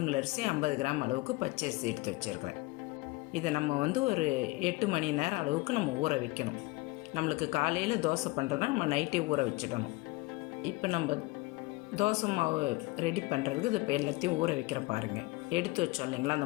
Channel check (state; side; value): quieter; right; 22.2 dB